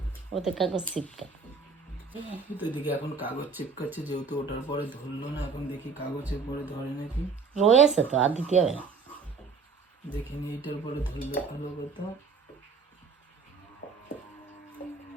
ওতে কাগজ চিপকা। এদিকে এখন কাগজ চিপকাচ্ছে, যেহেতু ওটার পরে ধরলো না, এখন দেখি কাগজের পরে ধরে নাকি। রয়েছে তো, আর দিতে হবে না। দেখিনি এইটার পরে ধরলে ভালো কথা।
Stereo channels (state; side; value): quieter; left; 4.9 dB